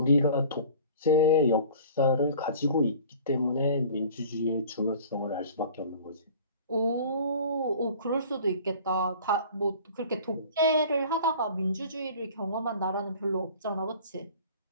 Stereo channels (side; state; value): both; inverted; correlation -0.45